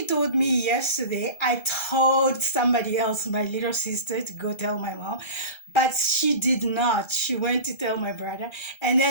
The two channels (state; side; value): late; right; 1.3 ms